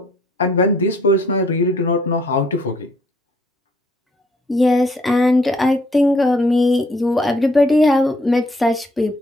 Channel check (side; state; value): both; normal; correlation 0.65